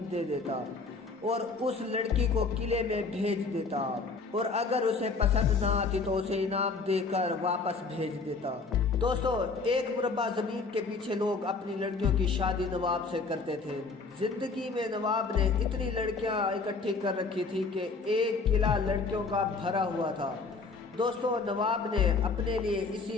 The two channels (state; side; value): quieter; right; 4.2 dB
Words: दे देता और उस लड़की को किले में भेज देता और अगर उसे पसंद ना आती तो उसे इनाम देकर वापस भेज देता। दोस्तों एक मुरब्बा ज़मीन के पीछे लोग अपनी लड़कियों की शादी नवाब से करते थे। जिंदगी में नवाब ने इतनी लड़कियां इकट्ठी कर रखी थी कि एक किला लड़कियों का भरा हुआ था। दोस्तों नवाब ने अपने लिए